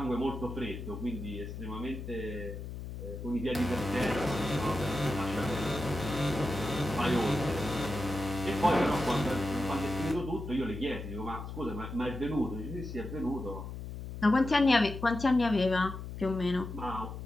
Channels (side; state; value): left; noise; hum, 8 dB below the sound